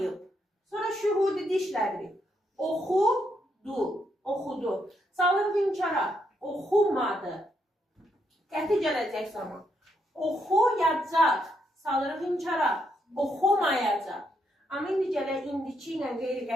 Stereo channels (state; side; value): normal; both; correlation 0.77